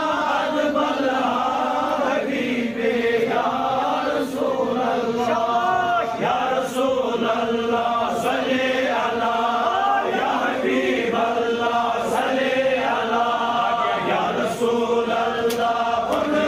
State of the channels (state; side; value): noise; right; hum, 27 dB below the sound